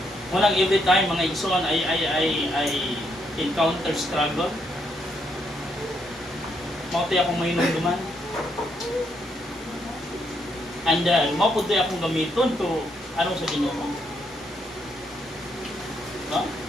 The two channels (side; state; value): both; normal; correlation 0.75